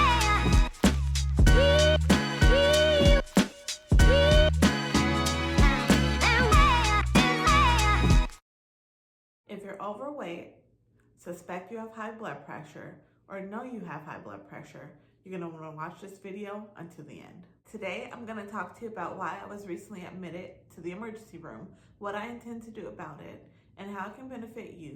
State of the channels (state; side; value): identical; both; correlation 1.00